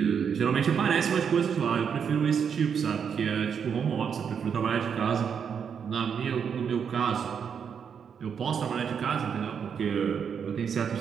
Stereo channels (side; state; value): left; quieter; 7.1 dB